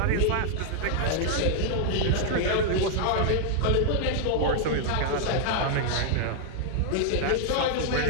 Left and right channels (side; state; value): both; different; correlation -0.01